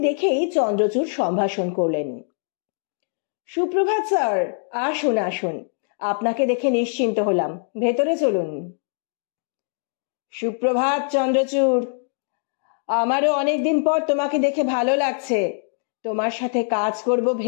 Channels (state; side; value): silent; right; 62 dB below the other